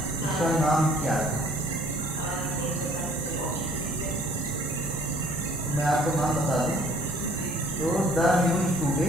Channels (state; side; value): normal; both; correlation 0.56